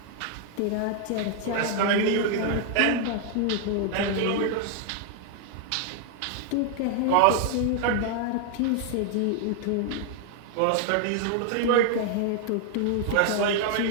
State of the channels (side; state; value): both; different; correlation 0.00